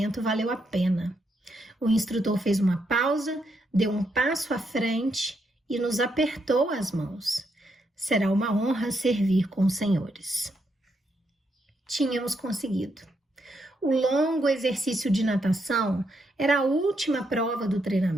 valeu a pena. O instrutor fez uma pausa, deu um passo à frente e nos apertou as mãos. Será uma honra servir com os senhores. Tínhamos conseguido. O longo exercício de natação era a última prova do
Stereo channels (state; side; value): normal; both; correlation 0.79